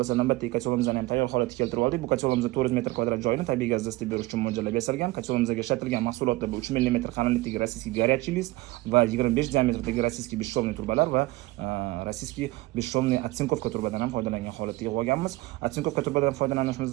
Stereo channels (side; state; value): left; quieter; 19.9 dB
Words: navbatdagi kacholimizni ham tayyor holatga keltirib oldik. Bu kacholimiz 400 metr kvadrat joyini tabiiy gazda isitib berish uchun mo'ljallab yasalgan. Kacholimizga ishlatilgan mahsulotlar bu 3 mm qalinlikdagi rossiyskiy горячий list va 25 diametrdagi rossiyskiy beshshovniy turbalar va rossiyskiy beshshovniy otsinkovka turbadan ham foydalangan holatda yig'ib olganmiz. Otsinkovka turbadan